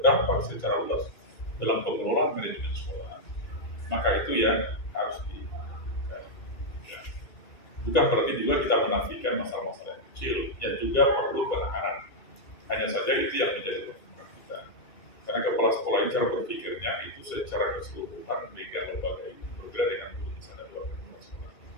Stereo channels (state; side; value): late; right; 2.3 ms